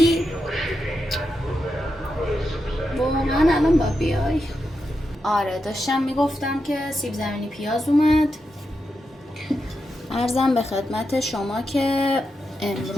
واقعا الان با بیای. آره داشتم میگفتم که سیب زمینی پیاز اومد. عرضم به خدمت شما که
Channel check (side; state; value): both; normal; correlation 0.87